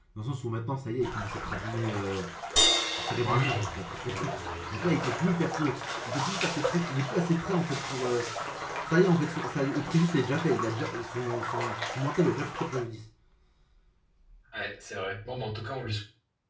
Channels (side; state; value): both; identical; correlation 1.00